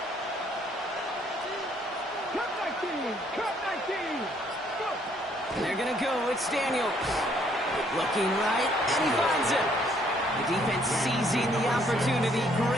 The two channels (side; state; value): both; normal; correlation 0.66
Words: Cut 19. Cut 19. Go. And they're going to go with Daniels. Looking right, and he finds it. The defense seizing the opportunity.